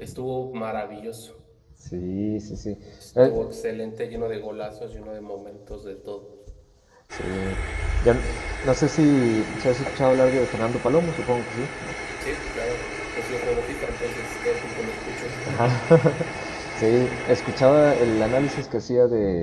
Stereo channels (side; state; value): both; identical; correlation 1.00